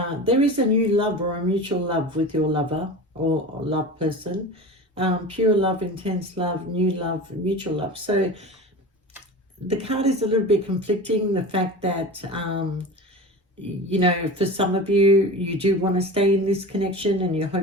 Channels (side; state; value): both; normal; correlation 0.32